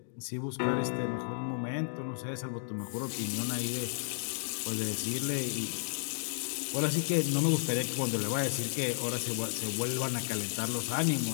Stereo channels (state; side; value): silent; right; digital silence